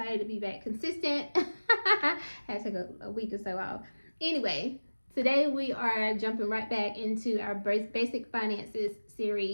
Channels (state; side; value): inverted; both; correlation -1.00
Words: to be back consistent. Had to take a week or so off. Anyway, today we are jumping right back into our basic finances